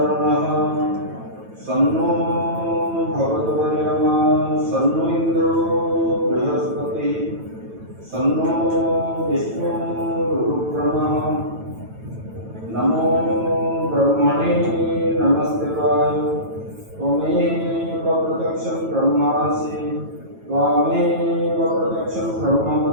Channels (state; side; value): late; left; 9.1 ms